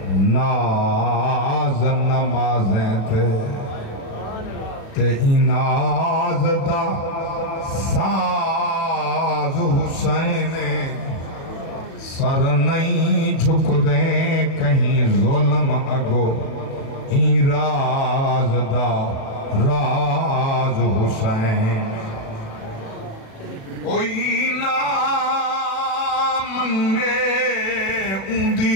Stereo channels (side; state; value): right; late; 36 ms